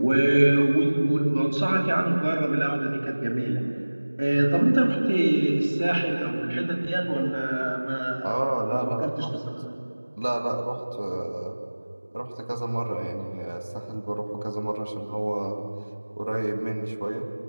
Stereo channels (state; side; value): inverted; both; correlation -1.00